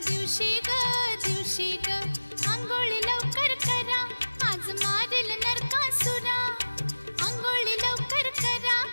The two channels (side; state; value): both; inverted; correlation -1.00